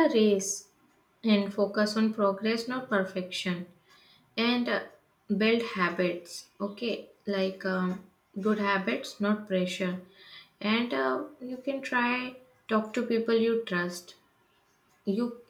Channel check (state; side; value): identical; both; correlation 1.00